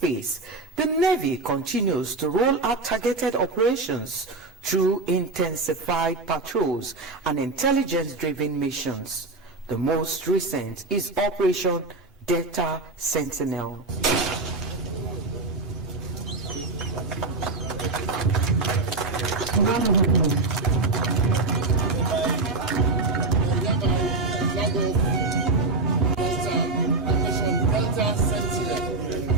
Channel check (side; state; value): left; quieter; 3.4 dB